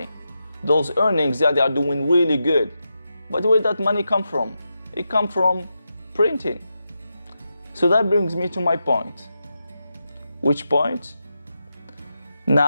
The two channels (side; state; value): both; inverted; correlation -0.88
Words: Those earnings, they are doing really good. But where did that money come from? It comes from printing. So that brings me to my point. Which point?